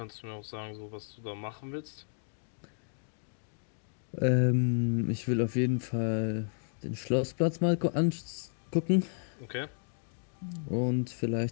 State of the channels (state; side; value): silent; right; digital silence